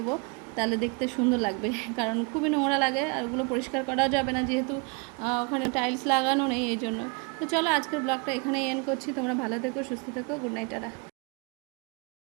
তাহলে দেখতে সুন্দর লাগবে, কারণ খুবই নোংরা লাগে, আর ওগুলো পরিষ্কার করাও যাবে না, যেহেতু ওখানে টাইলস লাগানো নেই, এই জন্য। তো চলো আজকের ব্লগটা এখানেই এন্ড করছি। তোমরা ভালো থেকো, সুস্থ থেকো, গুড নাইট, টাটা।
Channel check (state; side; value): quieter; left; 32.4 dB